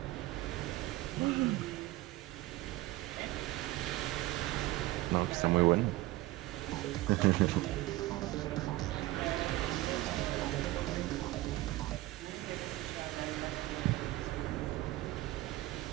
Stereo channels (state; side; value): quieter; left; 18.0 dB